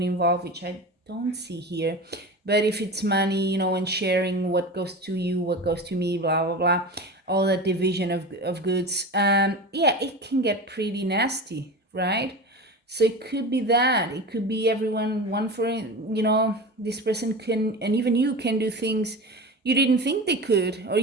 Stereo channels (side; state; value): both; normal; correlation 0.29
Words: involved, which I don't see here, but if it's money, and sharing what goes to you, what goes to me, blah, blah, blah, all that division of goods, it can get pretty nasty, right? So it could be that. It could be everyone, one for, this person can, and even you can do things you didn't think they could, or